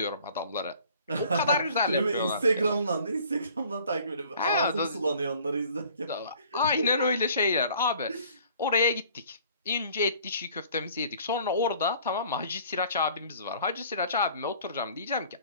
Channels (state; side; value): inverted; both; correlation -0.53